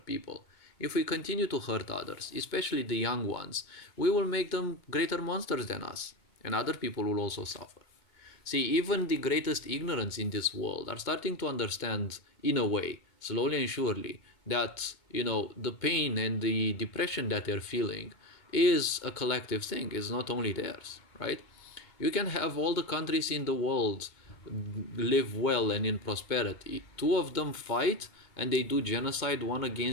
people, if we continue to hurt others, especially the young ones, we will make them greater monsters than us, and other people will also suffer. See, even the greatest ignorance in this world are starting to understand, in a way, slowly and surely, that, the pain and the depression that they're feeling is a collective thing, is not only theirs, right? You can have all the countries in the world live well and in prosperity. Two of them fight and they do genocide one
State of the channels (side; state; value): right; late; 2.2 ms